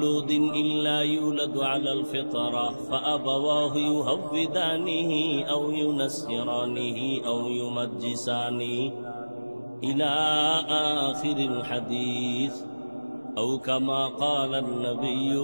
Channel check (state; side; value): inverted; both; correlation -1.00